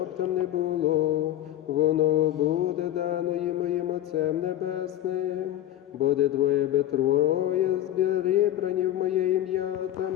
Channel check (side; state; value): right; quieter; 12.8 dB